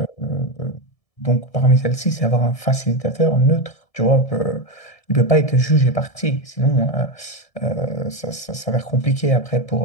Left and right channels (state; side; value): late; right; 1.7 ms